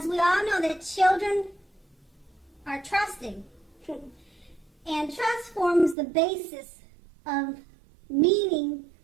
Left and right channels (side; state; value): left; drops out; at 6.0 s